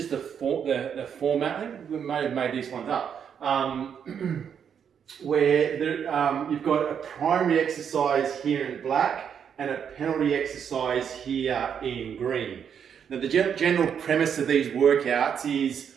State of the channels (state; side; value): quieter; left; 7.8 dB